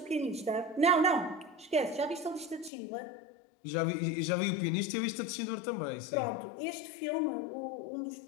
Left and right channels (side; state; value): right; drops out; at 2.7 s